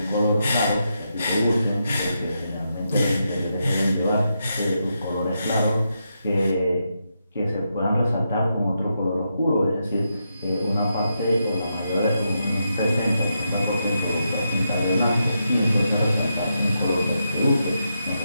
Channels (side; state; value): both; inverted; correlation -0.83